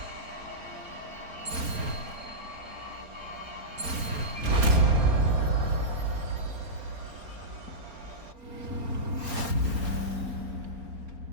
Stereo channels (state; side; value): late; left; 4.3 ms